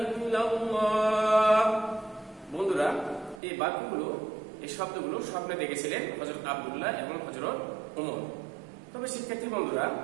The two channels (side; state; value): left; drops out; at 3.4 s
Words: ইল্লাল্লাহ। বন্ধুরা, এই বাক্যগুলো, এই শব্দগুলো স্বপ্নে দেখেছিলেন হযরত আব্দুল্লাহ এবং হযরত ওমর। তবে শিক্ষার্থী বন্ধুরা,